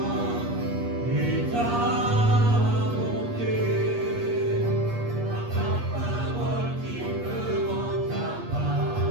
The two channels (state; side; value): late; left; 8.4 ms